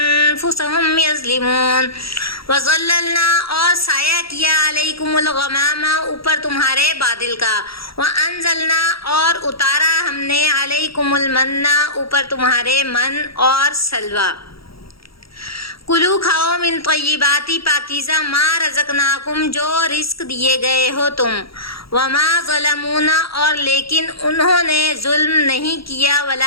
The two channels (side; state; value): right; late; 0.75 ms